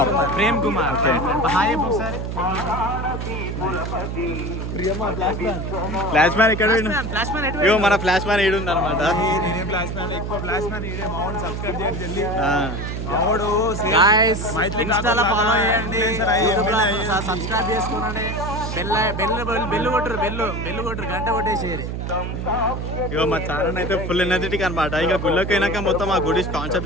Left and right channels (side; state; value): right; noise; hum, 4 dB below the sound